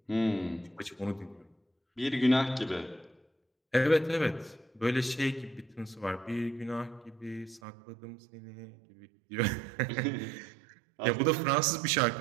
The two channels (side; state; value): left; drops out; at 7.6 s